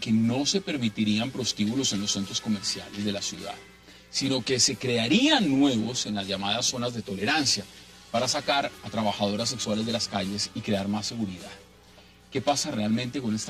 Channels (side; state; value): both; identical; correlation 1.00